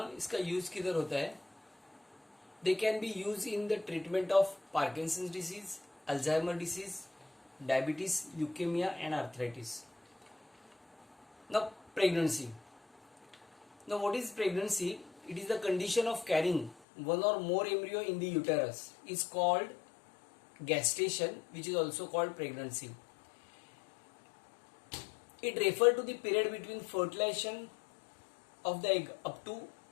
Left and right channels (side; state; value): right; drops out; at 16.8 s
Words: इसका यूज किधर होता है? They can be use in the treatment of Parkinson's disease, Alzheimer disease, diabetes, leukaemia and arthritis. Now pregnancy. Now, what is pregnancy? It is the condition of carrying one or more embryo in the uterus. Is called gestation, which is also called pregnancy. It refers to the period between fertilization of the egg up to